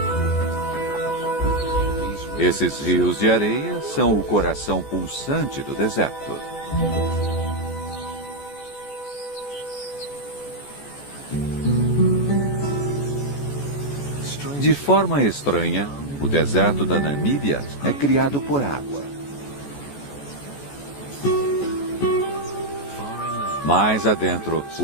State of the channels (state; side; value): late; right; 14 ms